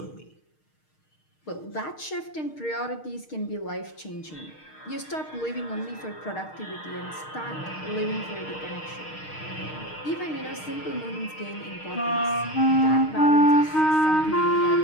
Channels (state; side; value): late; right; 6.5 ms